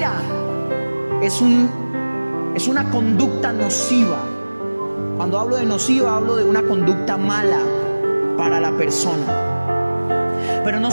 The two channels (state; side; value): inverted; both; correlation -1.00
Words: es una conducta nociva. Cuando hablo de nociva, hablo de una conducta mala para la persona. Pero no